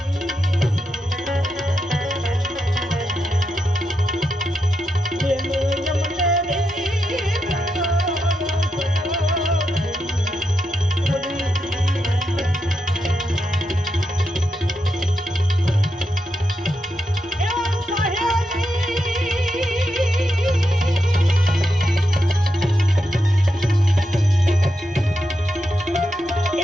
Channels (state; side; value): normal; both; correlation 0.85